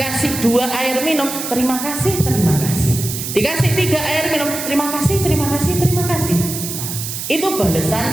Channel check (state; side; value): noise; right; hiss, 6 dB below the sound